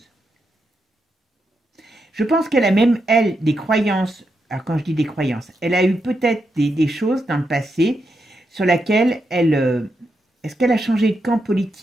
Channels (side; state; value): both; normal; correlation 0.84